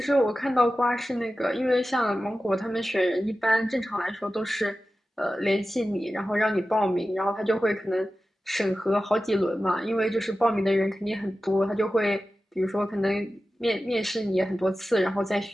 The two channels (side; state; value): both; normal; correlation 0.94